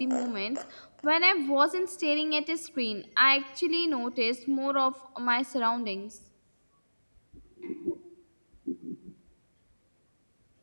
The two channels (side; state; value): both; inverted; correlation -1.00